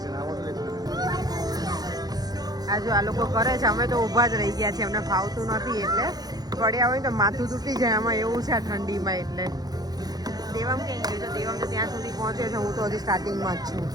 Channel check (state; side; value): late; left; 0.19 ms